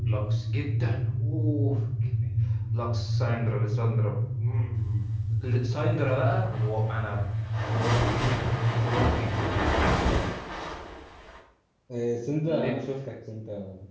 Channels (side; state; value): both; identical; correlation 1.00